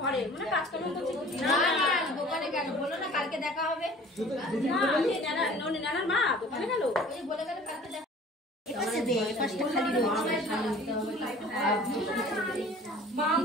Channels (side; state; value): both; normal; correlation 0.47